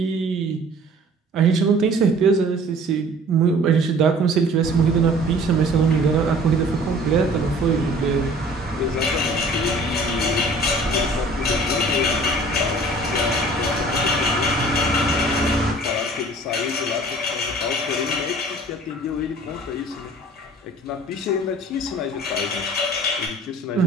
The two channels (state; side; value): normal; both; correlation 0.49